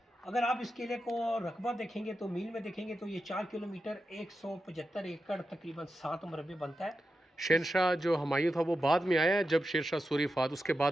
अगर आप इस किले को रकबा देखेंगे तो मील में देखेंगे तो ये 4 किलोमीटर 175 एकड़ तकरीबन 7 मरबे बनता है. शेरशाह जो हुमायूं था वो बाद में आया, जब शेरशाह सूरी फात उसके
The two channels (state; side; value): normal; both; correlation 0.90